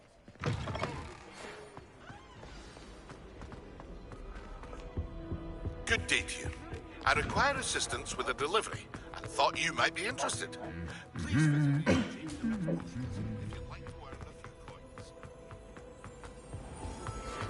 Good day to you. I require assistance with a delivery and thought you might be interested. Please visit me.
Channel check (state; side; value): identical; both; correlation 1.00